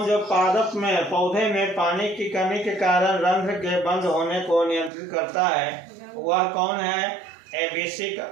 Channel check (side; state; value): left; drops out; at 4.9 s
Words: जो पादप में पौधे में पानी की कमी के कारण रंध्र के बंद होने को नियंत्रित करता है, वह कौन है? एबिसिक